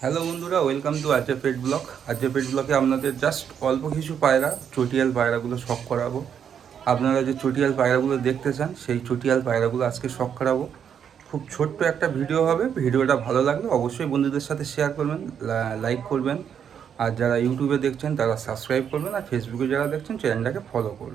হ্যালো বন্ধুরা, ওয়েলকাম টু আজকে পেট ব্লক। আজকে পেট ব্লকে আপনাদের জাস্ট অল্প কিছু পায়রা, চটিয়াল পায়রাগুলো শখ করাবো। আপনারা যে চটিয়াল পায়রাগুলো দেখতে চান, সেই চটিয়াল পায়রাগুলো আজকে শখ করাবো। খুব ছোট্ট একটা ভিডিও হবে। ভিডিওটা ভালো লাগলে অবশ্যই বন্ধুদের সাথে শেয়ার করবেন, লাইক করবেন। আর যারা ইউটিউবে দেখছেন তারা সাবস্ক্রাইব করবেন, আর ফেসবুকে যারা দেখছেন চ্যানেলটাকে ফলো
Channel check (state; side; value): quieter; left; 8.1 dB